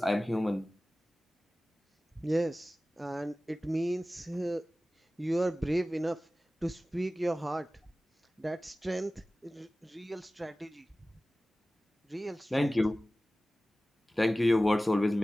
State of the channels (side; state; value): both; normal; correlation 0.97